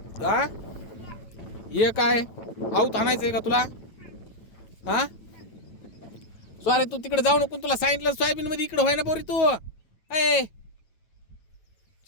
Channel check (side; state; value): right; late; 9.0 ms